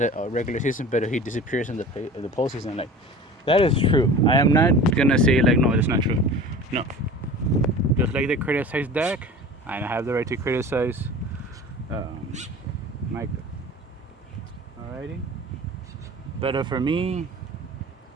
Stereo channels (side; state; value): both; normal; correlation 0.38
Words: regular season, but he disappears in the postseason. Like, that is true. I am not gonna say like, no, that's not true. No, just like they criticize Dak, I have the right to criticize um, Micah. Alrighty, but for me,